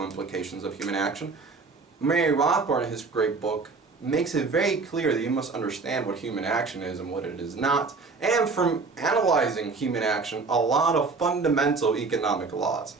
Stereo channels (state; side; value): quieter; left; 4.2 dB